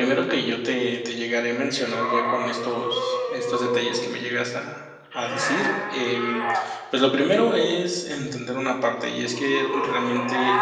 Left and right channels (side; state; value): both; identical; correlation 1.00